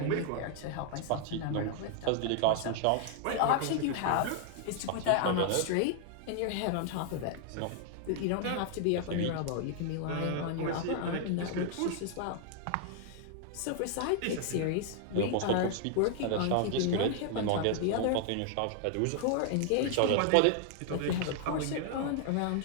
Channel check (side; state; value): both; different; correlation 0.00